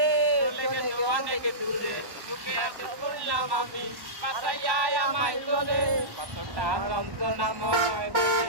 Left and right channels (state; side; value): late; left; 1.1 ms